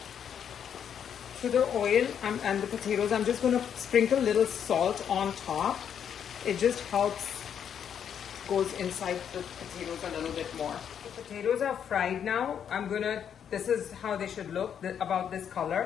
To the oil and the potatoes, I'm just going to sprinkle a little salt on top. It just helps, goes inside the potatoes a little bit more. The potatoes are fried now. This is how they should look, about this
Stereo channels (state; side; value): quieter; right; 8.4 dB